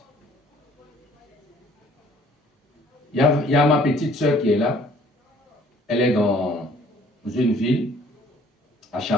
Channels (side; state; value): both; normal; correlation 0.57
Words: Il y a ma petite soeur qui est là. Elle est dans une ville, à